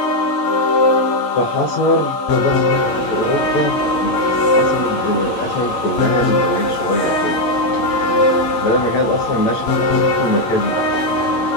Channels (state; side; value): late; right; 8.9 ms